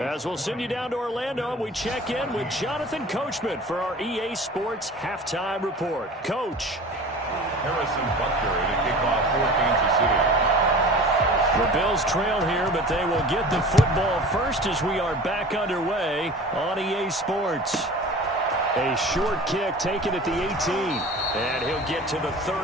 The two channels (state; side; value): normal; both; correlation 0.40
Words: we'll send you down to Orlando, we check in with Jonathan Coachman for our EA Sports Halftime Report. Coach. Harrison Butker to kick off for Kansas City. The Bills trail here, but they will get the football first as we are back underway on EA Sports. A short kick taken at the 18. And he'll get to the